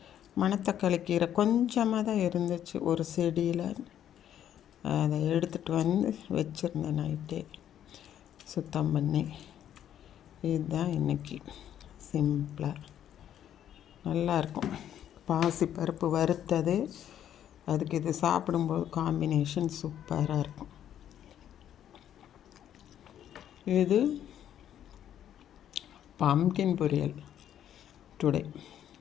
மணத்தக்காளி கீரை கொஞ்சமாக தான் இருந்துச்சு ஒரு செடியில். அதை எடுத்துகிட்டு வந்து வச்சுருந்தேன் நைட்டே சுத்தம் பண்ணி. இதுதான் இன்றைக்கி சிம்பிளாக நல்லாயிருக்கும். பாசி பருப்பு வறுத்தது, அதுக்கு இது சாப்பிடும்போது காம்பினேஷன் சூப்பராக இருக்கும். இது பம்கின் பொரியல் டுடே.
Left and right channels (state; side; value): quieter; right; 10.5 dB